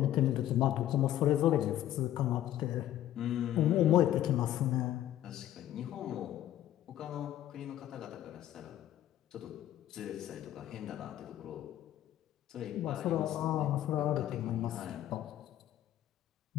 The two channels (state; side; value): quieter; right; 12.6 dB